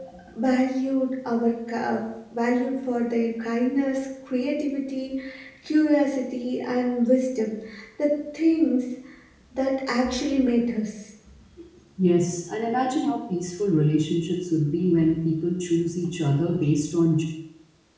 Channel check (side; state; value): both; identical; correlation 1.00